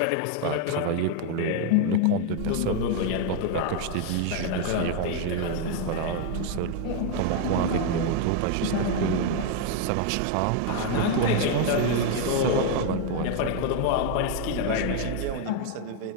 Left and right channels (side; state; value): both; different; correlation 0.01